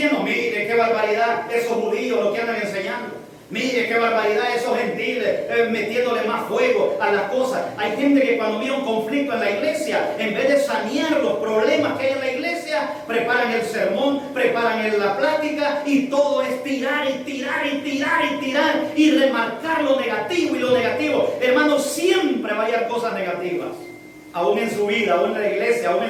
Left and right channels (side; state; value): both; identical; correlation 1.00